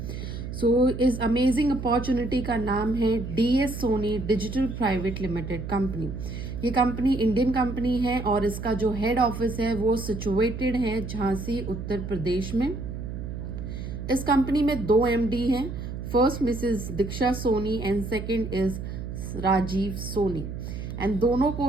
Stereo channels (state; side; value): noise; right; hum, 7 dB below the sound